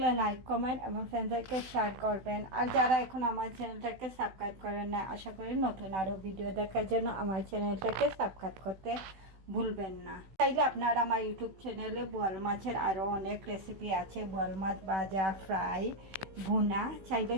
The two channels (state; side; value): late; left; 16 ms